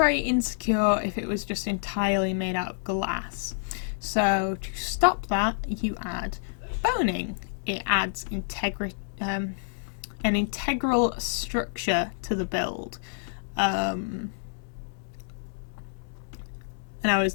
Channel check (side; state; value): right; silent; digital silence